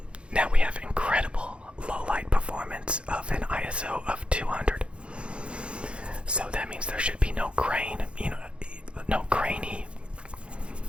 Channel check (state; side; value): late; left; 0.058 ms